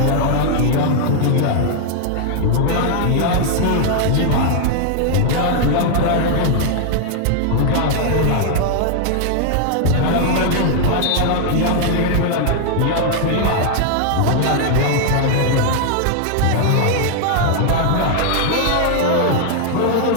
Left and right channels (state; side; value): different; both; correlation 0.00